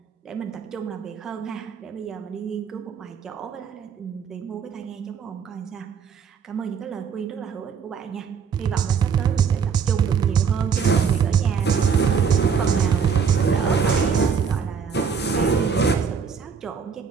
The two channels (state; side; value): quieter; left; 6.4 dB